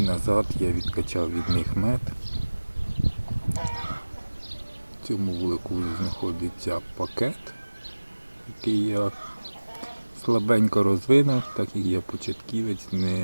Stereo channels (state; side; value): inverted; both; correlation -1.00